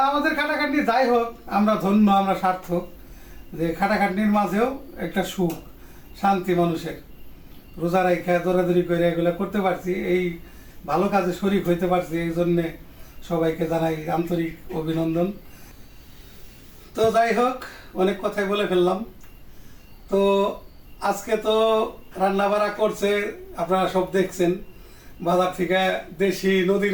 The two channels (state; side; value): identical; both; correlation 1.00